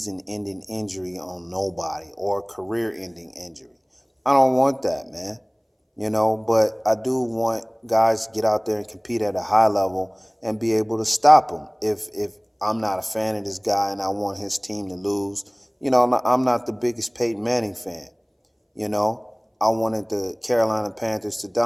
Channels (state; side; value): identical; both; correlation 1.00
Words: injury on nobody or a career-ending injury. I don't want that, man. You know, but I do want guys to get out there and compete at a high level and be able to stop them. If I'm not a fan of this guy and I want his team to lose, you know, I'm not the biggest Peyton Manning fan. You know, I wanted the Carolina Panthers to